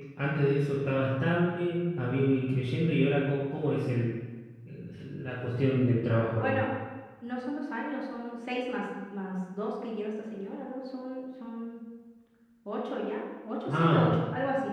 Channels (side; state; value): both; identical; correlation 1.00